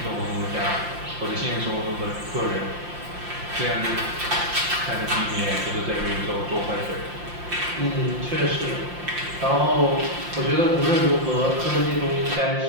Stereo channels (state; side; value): late; left; 5.7 ms